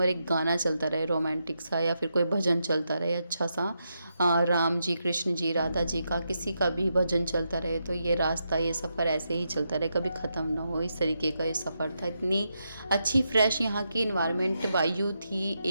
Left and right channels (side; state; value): both; inverted; correlation -0.84